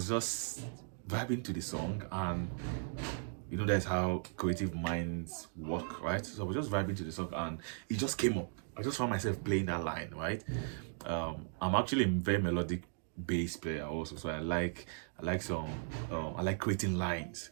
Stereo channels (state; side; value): silent; left; digital silence